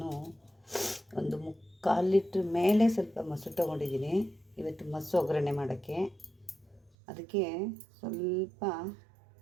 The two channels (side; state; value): left; drops out; at 6.9 s